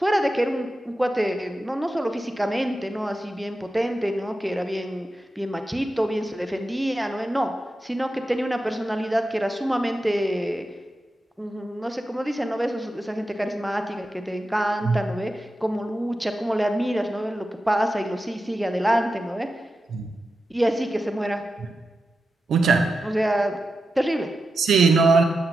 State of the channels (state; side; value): normal; both; correlation 0.90